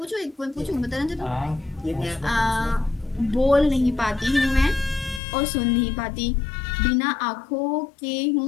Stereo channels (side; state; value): right; drops out; at 5.2 s